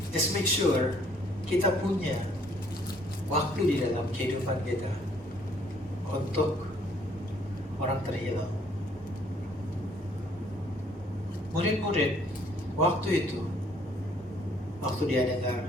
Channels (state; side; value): normal; both; correlation 0.62